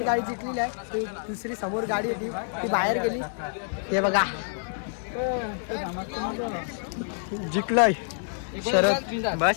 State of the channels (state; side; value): silent; right; digital silence